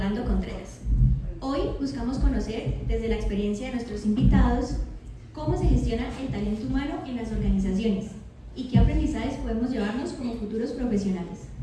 Contreras. Hoy buscamos conocer desde la experiencia de nuestros invitados cómo se gestiona el talento humano en las organizaciones y qué aprendizajes podemos llevarnos como futuros profesionales.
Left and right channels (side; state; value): both; identical; correlation 1.00